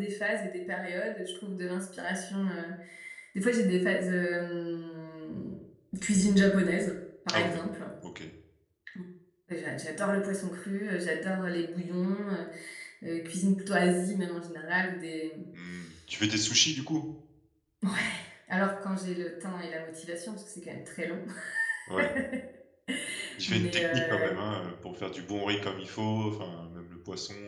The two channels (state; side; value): identical; both; correlation 1.00